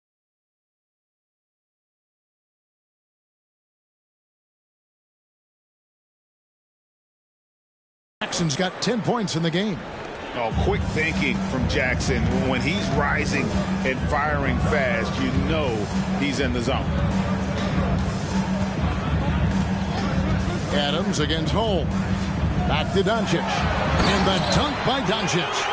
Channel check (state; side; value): identical; both; correlation 1.00